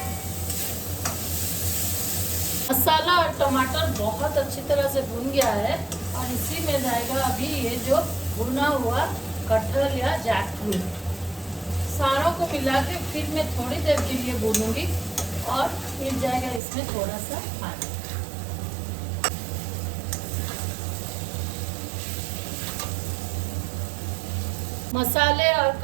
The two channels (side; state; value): left; drops out; at 16.6 s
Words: मसाला और टमाटर बहुत अच्छी तरह से भून गया है और इसी में जाएगा अभी ये जो भुना हुआ कटहल या जैकफ्रूट। सारों को मिला के फिर मैं थोड़ी देर के लिए भूनूंगी और फिर जाएगा इसमें थोड़ा सा पानी। मसाले और